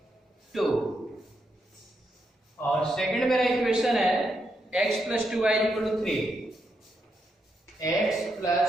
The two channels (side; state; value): both; normal; correlation 0.81